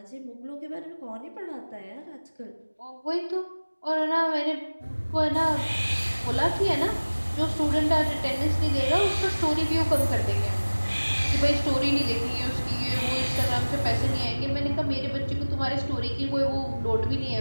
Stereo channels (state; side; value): inverted; both; correlation -1.00